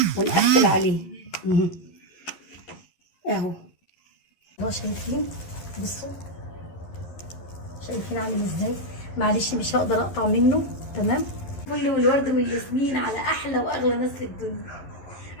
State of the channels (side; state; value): right; late; 11 ms